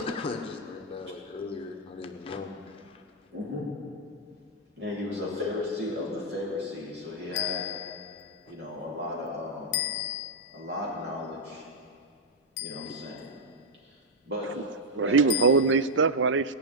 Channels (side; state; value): both; normal; correlation -0.03